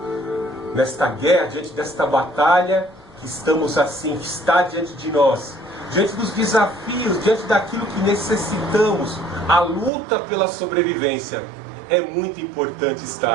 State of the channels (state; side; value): drops out; left; at 9.9 s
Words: nesta guerra, diante desta batalha, que estamos assim, que está diante de nós, diante dos desafios, diante daquilo que necessitamos, a luta pela sobrevivência. É muito importante